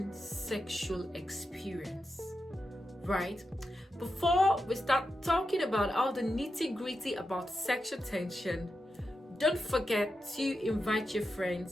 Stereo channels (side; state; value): both; normal; correlation 0.88